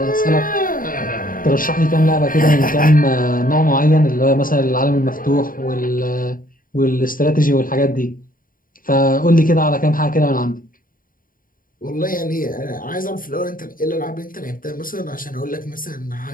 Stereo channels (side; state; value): right; late; 0.41 ms